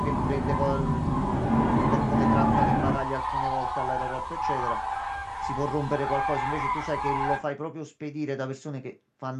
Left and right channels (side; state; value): both; identical; correlation 1.00